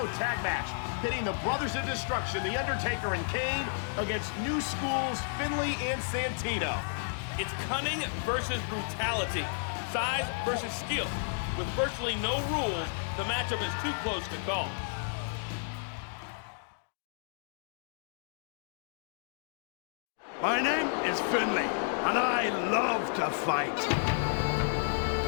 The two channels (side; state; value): right; silent; digital silence